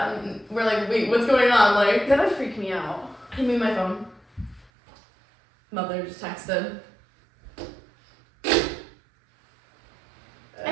And we're like, wait, what's going on? Like, That would freak me out. hand me my phone. Mother just texted.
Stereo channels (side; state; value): left; drops out; at 4.7 s